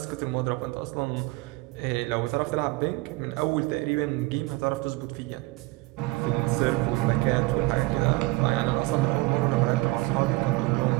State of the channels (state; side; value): quieter; left; 21.8 dB